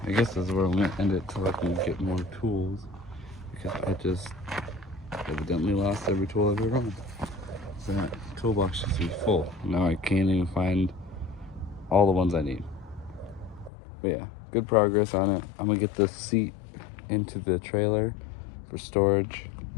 I guess that's where I'm gonna end it till I can get more tools, because I just evidently lost every tool I've ever owned. So that toolbox used to be full. Now I can't even find all the ones I need. But yeah, good progress on it. I'm gonna get this seat into the trailer for storage.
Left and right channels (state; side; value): drops out; right; at 13.7 s